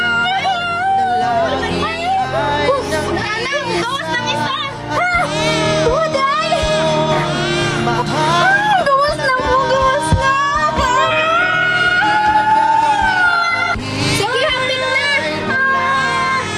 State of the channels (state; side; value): identical; both; correlation 1.00